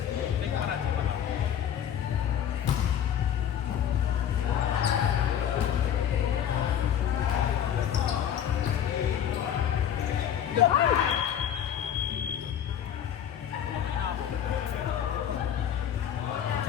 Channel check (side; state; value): right; quieter; 9.5 dB